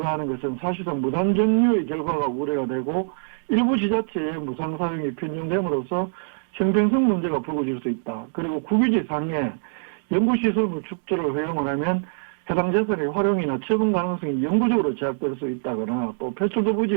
하는 것은 사실상 무단정유의 결과가 우려가 되고 일부 지자체의 무상사용이 편중됨으로써 형평성 문제가 불거질 수 있다. 그리고 국유지상에 연구시설물 축조를 허용을 하면 해당 재산의 활용이나 처분 가능성이 영구적으로 제약될 수 있다거나 또 폐출도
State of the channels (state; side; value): silent; left; digital silence